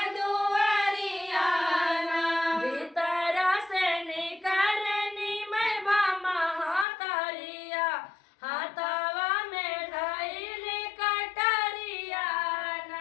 दुआरियाना। भीतर से निकलनी मैं भामा हाथरिया हाथवा में ढाईली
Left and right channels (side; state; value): right; drops out; at 6.9 s